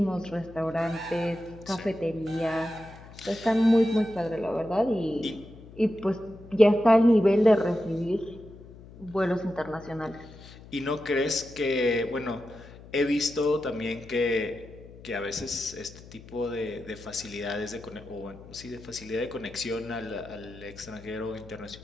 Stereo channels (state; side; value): noise; left; hum, 19 dB below the sound